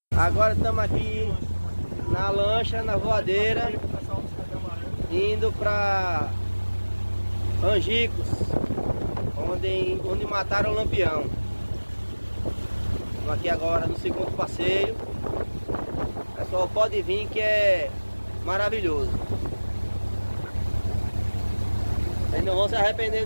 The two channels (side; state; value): both; inverted; correlation -1.00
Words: Agora estamos aqui na lancha, na voadeira, indo para Angicos, onde mataram o Lampião. Estamos aqui agora no segundo passeio. Pessoal, pode vir que é maravilhoso. Vocês não vão se arrepender